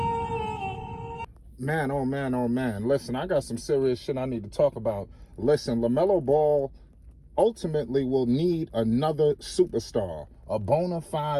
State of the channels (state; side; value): identical; both; correlation 1.00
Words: Man, oh man, oh man. Listen, I got some serious shit I need to talk about. Listen, LaMelo Ball ultimately will need another superstar, a bona